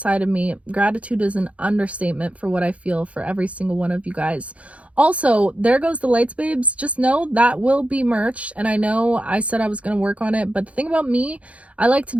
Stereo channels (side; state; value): left; late; 0.064 ms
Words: of me. Gratitude is an understatement for what I feel for every single one of you guys. Also, there goes the lights, babes. Just know that will be merch. And I know I said I was going to work on it, but the thing about me, I like to